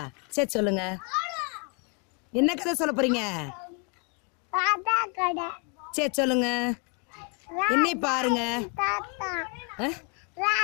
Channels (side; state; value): right; quieter; 35.4 dB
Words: சரி சொல்லுங்க. என்ன கதை சொல்ல போகிறீங்க? சரி சொல்லுங்க. என்னை பாருங்க.